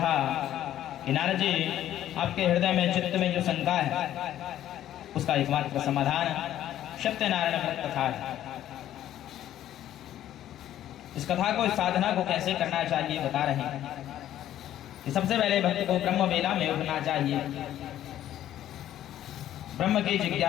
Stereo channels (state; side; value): quieter; right; 12.1 dB